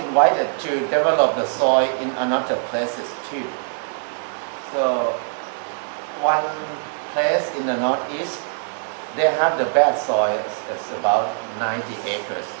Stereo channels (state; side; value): silent; left; digital silence